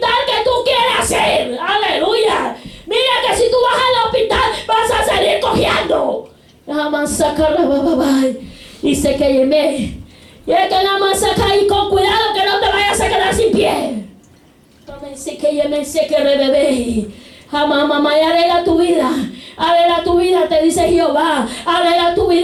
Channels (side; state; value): both; identical; correlation 1.00